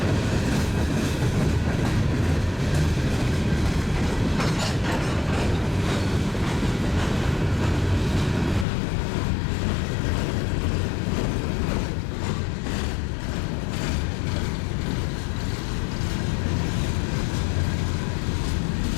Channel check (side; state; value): right; drops out; at 8.7 s